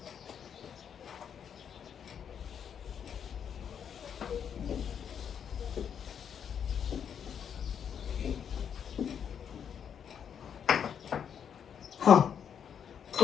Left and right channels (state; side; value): quieter; right; 8.0 dB